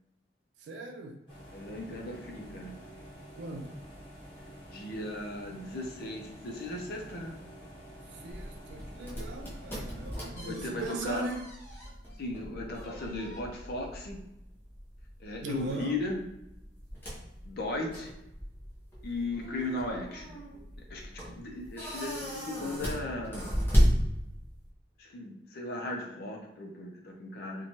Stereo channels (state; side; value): normal; both; correlation 0.67